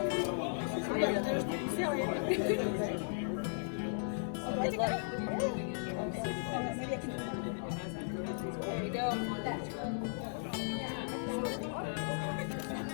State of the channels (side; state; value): right; silent; digital silence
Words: Oh, yeah, there's seal it. Good luck. Maybe I can. There you go.